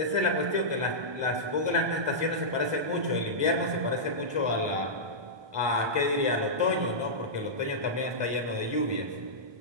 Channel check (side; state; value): left; late; 1.2 ms